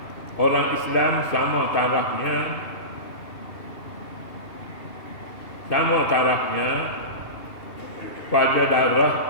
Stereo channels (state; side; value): late; right; 2.7 ms